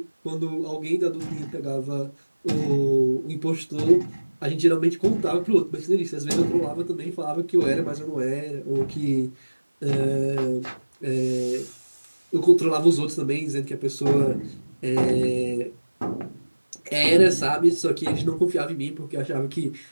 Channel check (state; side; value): inverted; both; correlation -1.00